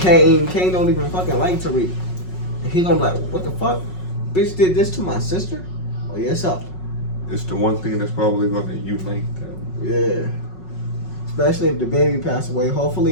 Kane don't even fucking like Tariq. He gonna be like, what the fuck? Bitch did this to my sister? Oh, yes, up. It's the one thing that's probably going to unite them. Yeah. Especially if the baby passed away.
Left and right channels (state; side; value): late; right; 5.4 ms